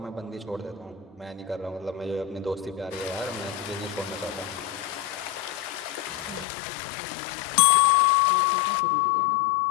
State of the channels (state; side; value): drops out; right; at 6.5 s